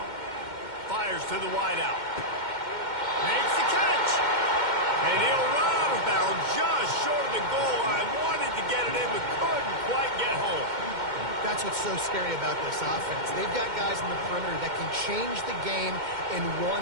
Fires to the wideout. Makes the catch. And he'll run out of bounds just short of the goal line. Wanted to get it in, but couldn't quite get home. That's what's so scary about this offense. They've got guys in the perimeter that can change the game in one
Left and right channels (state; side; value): late; left; 2.1 ms